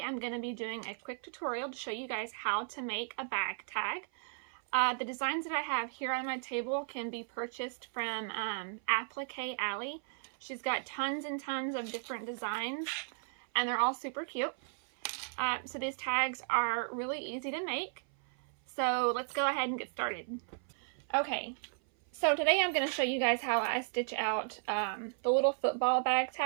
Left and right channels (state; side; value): silent; left; 54 dB below the other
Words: I'm going to be doing a quick tutorial to show you guys how to make a bag tag. The designs that I have here on my table can be purchased from Appliqué Alley. She's got tons and tons of different designs and they're all super cute. So these tags are really easy to make. So let's go ahead and get started. Okay, so today I'm going to show you guys how I stitch out the little football bag